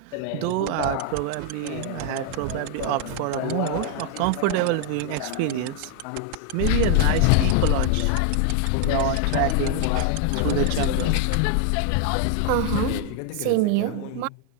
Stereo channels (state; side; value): different; both; correlation 0.00